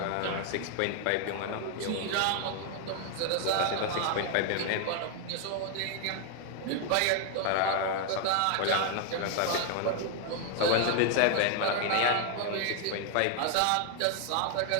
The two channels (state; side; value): different; both; correlation 0.00